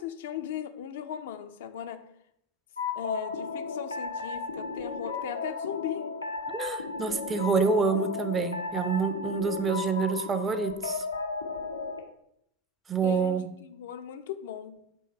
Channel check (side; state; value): both; normal; correlation 0.22